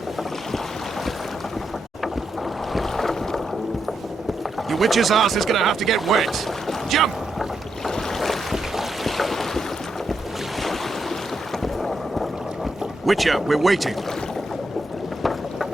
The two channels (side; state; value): both; normal; correlation 0.82